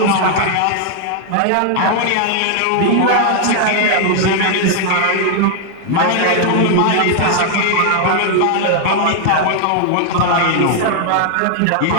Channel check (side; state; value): both; different; correlation 0.00